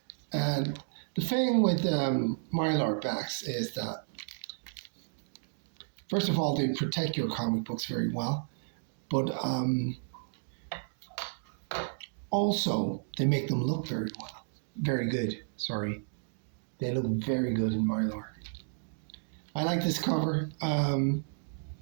And the thing with Mylar backs is that, first of all, they protect your comic books very well, but also they make them look very well. Very good, sorry. They look very good in Mylar. I like this cover. I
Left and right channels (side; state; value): left; silent; digital silence